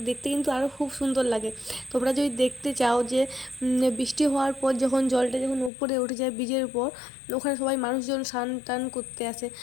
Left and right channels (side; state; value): right; drops out; at 5.7 s